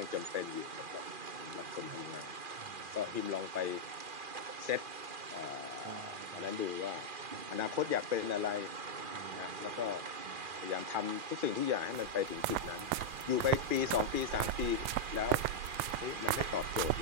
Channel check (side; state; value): left; late; 2.5 ms